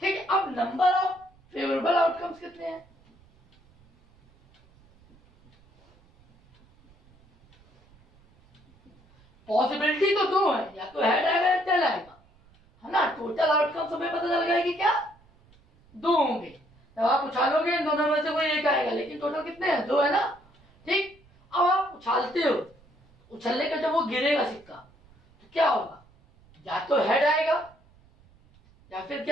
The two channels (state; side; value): noise; right; rumble, 30 dB below the sound